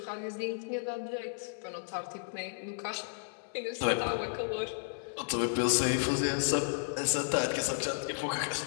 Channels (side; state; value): right; silent; 56 dB below the other